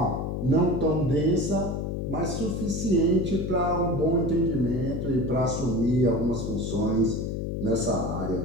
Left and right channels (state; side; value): noise; left; hum, 3 dB below the sound